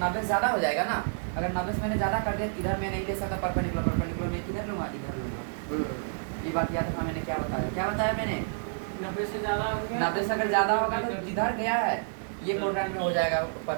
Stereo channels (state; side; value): silent; left; 58 dB below the other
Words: से ज़्यादा हो जाएगा ना, अगर 90 से मैंने ज़्यादा कर दिया, इधर मैं नहीं ले सकता परपेंडिकुलर मैं किधर लूँगा? इधर लूँगा। ये बात याद रखना, मैंने क्या बताया मैंने? 90 से ज़्यादा हो गया। 90 से अगर ज़्यादा होगा तो जिधर गया है ये क्वाड्रेंट में हो जाएगा